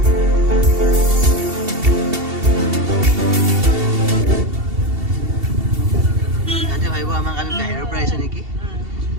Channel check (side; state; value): left; late; 2.7 ms